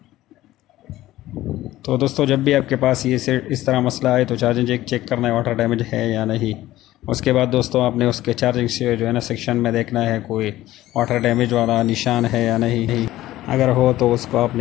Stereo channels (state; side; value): quieter; right; 15.4 dB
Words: तो दोस्तों जब भी आपके पास ये से इस तरह मसला आए तो चार्जिंग जैक चेक करना है वाटर डैमेज है या नहीं। उसके बाद दोस्तों आपने उसके चार्जिंग से जो है ना सेक्शन में देखना है कोई वाटर डैमेज वाला निशान है या नहीं। अगर हो तो उसको